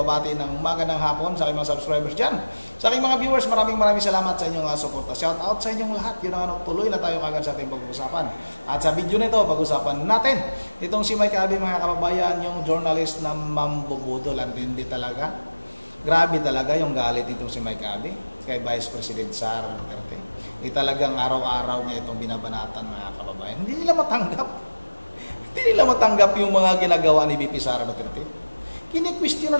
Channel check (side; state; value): both; inverted; correlation -1.00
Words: ng magandang hapon sa aking mga subscribers dyan. Sa aking mga viewers, maraming salamat sa inyong suporta. Shout out sa inyong lahat. Yun ang tuloy na tayo kagad sa ating pag-usapan. At sa video nito, pag-usapan natin itong si Mike Abby, mga kababayan, yung journalist na mambubudol. Hindi talaga. Grabe talaga yung galit itong si Mike Abby kay Vice President Sara Duterte. Talagang araw-araw niya itong binabanatan, mga kababayan. Hindi nila matanggap yung mga ginagawa ni VP Sara Duterte. Kini-question na